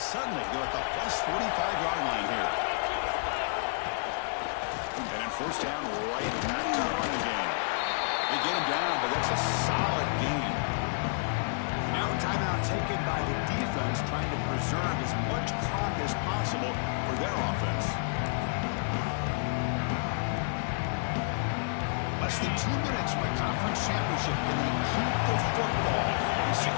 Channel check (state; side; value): silent; right; digital silence